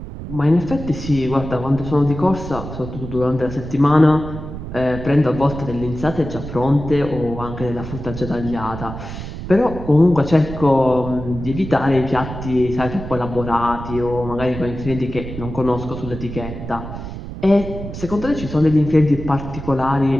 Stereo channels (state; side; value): noise; right; rumble, 9 dB below the sound